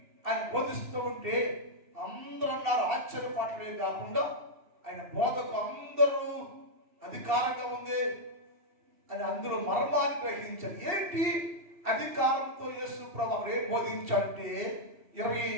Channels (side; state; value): left; late; 2.7 ms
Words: ఆయన బోధిస్తూ ఉంటే అందరూ అన్నారు. ఆశ్చర్యపడలే కాకుండా ఆయన బోధకు అందరూ అధికారంగా ఉంది అని అందరూ మర్మాన్ని గ్రహించారు. ఏంటి అధికారంతో యేసు ప్రభువు ఏం బోధించాలంటే